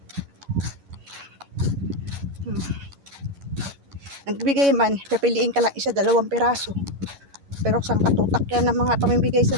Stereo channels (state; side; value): late; left; 11 ms